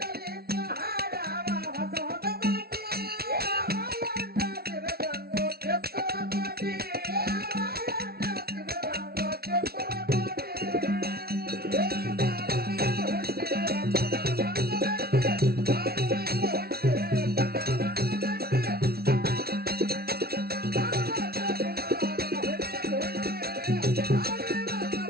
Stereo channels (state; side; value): late; left; 0.45 ms